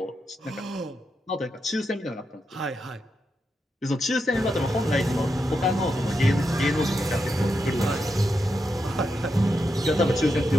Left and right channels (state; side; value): normal; both; correlation 0.85